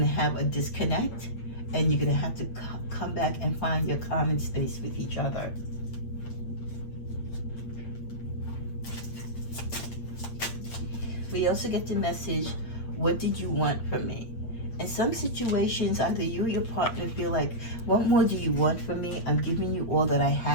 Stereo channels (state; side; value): late; right; 8.6 ms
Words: to have a disconnect, and you're going to have to come back and find your common space with each other. We also get the message, what did you want from me? In some situations, either you or your partner feel like, what more do you want from me? I'm giving you all that I